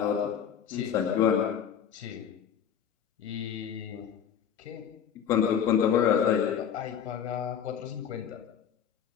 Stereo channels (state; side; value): quieter; right; 8.4 dB